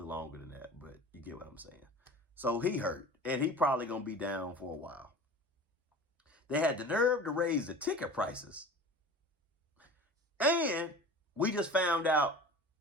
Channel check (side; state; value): both; normal; correlation 0.38